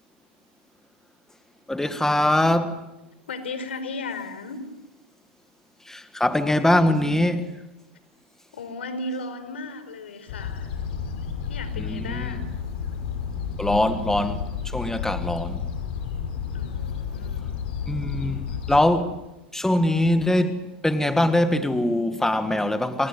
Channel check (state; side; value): normal; both; correlation 0.76